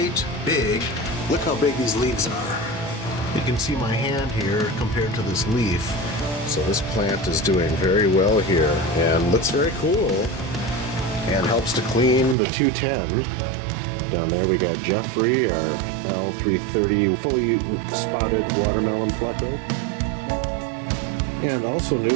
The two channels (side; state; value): left; drops out; at 12.4 s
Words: big. Look how big these leaves are. You can see my hand here compared to this leaf. So this plant is doing very well here and looks very cool and helps to clean the 210. Down there we got Jeffrey, our L330 fully spotted watermelon pleco. And also